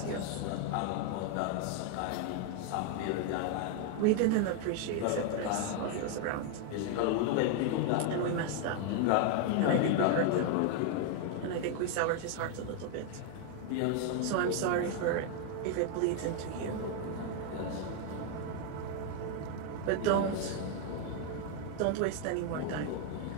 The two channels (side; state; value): both; different; correlation 0.01